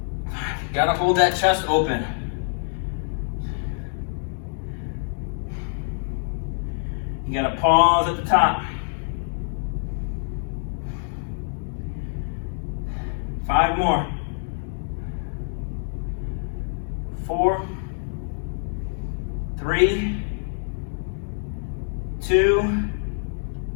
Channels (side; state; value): right; silent; digital silence